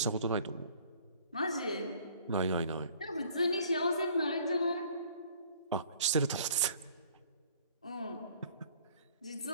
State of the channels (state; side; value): inverted; both; correlation -0.55